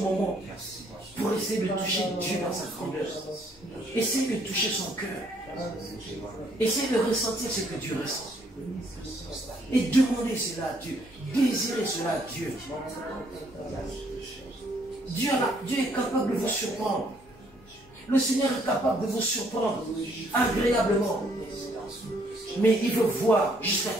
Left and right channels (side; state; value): left; noise; hum, 28 dB below the sound